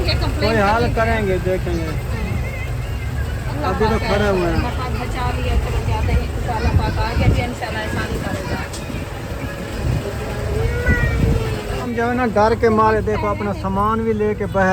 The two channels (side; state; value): both; identical; correlation 1.00